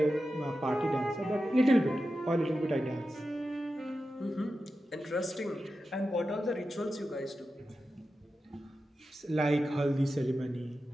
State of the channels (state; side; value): normal; both; correlation 0.91